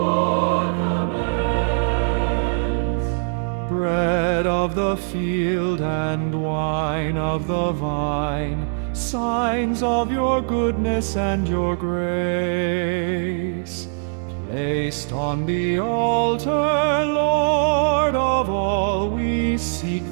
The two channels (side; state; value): left; silent; digital silence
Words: commands. Bread of the field and wine of the vine, signs of your goodness and your grace, placed on the altar, Lord of all, we seek